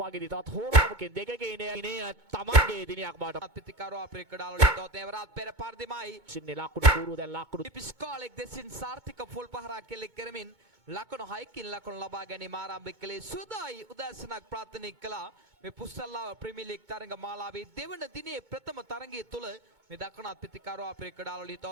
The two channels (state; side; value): late; left; 2.2 ms